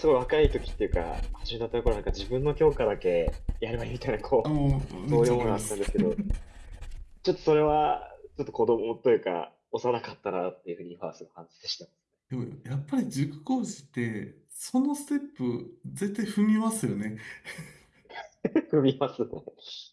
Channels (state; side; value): identical; both; correlation 1.00